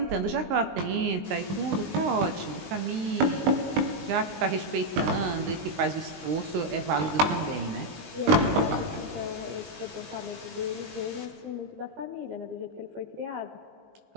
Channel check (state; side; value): late; left; 19 ms